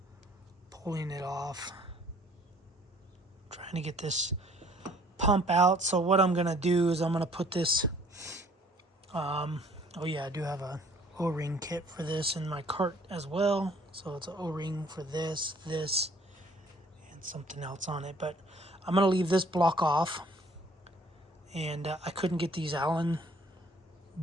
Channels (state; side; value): normal; both; correlation 0.57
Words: pulling it off, trying to get this pump out. So what I'm gonna do is I'm gonna put this oh yeah, I do have a O-ring kit for this in my cart as well. So it's an O-ring for this, and something else on it. But I'm gonna leave this block off, and I couldn't get these Allen